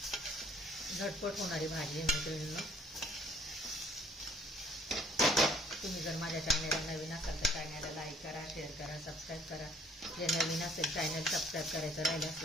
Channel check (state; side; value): normal; both; correlation 0.59